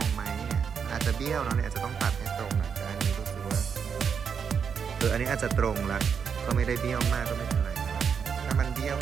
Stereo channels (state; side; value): quieter; left; 6.8 dB